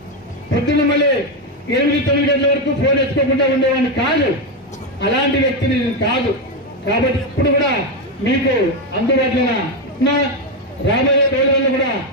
పొద్దున్న మళ్ళీ 8-9 గంటల వరకు ఫోన్ ఎత్తుకోకుండా ఉండేవాడిని కాదు. అలాంటి వ్యక్తిని నేను కాదు. కాబట్టి ఇప్పుడు కూడా మీకు అందుబాటులో ఉన్నా, రాబోయే రోజుల్లో కూడా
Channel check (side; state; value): both; normal; correlation 0.07